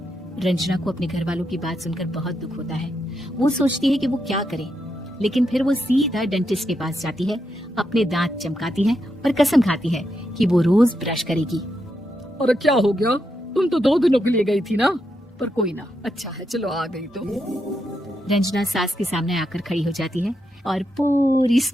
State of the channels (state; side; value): normal; both; correlation 0.83